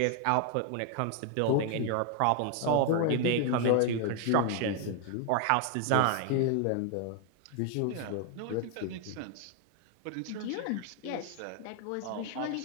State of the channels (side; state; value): both; different; correlation 0.00